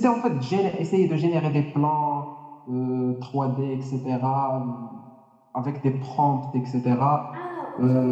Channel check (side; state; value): both; identical; correlation 1.00